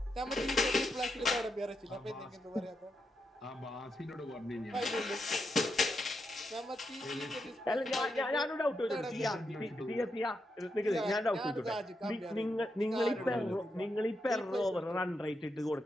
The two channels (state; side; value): normal; both; correlation 0.84